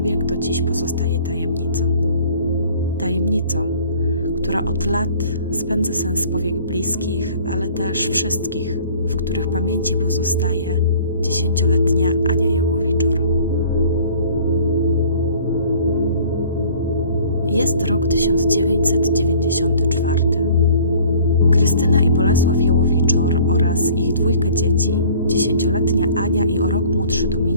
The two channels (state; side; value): inverted; both; correlation -0.51